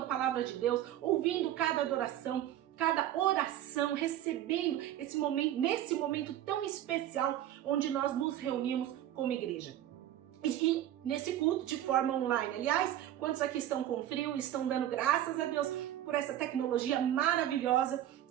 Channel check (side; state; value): left; quieter; 12.3 dB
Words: palavra de Deus, ouvindo cada adoração, cada oração, recebendo esse momento, nesse momento tão especial onde nós nos reunimos como igreja. E nesse culto de forma online. Aliás, quantos aqui estão com frio, estão dando graças a Deus por essa tecnologia maravilhosa